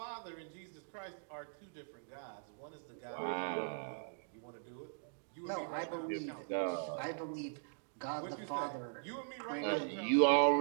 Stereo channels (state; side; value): silent; left; digital silence